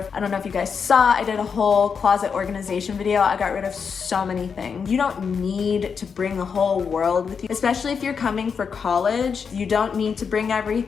I don't know if you guys saw, I did a whole closet organization video. I got rid of so many things. You don't need to bring the whole world with you, especially if you're coming for college. You don't need to bring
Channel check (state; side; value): quieter; right; 6.1 dB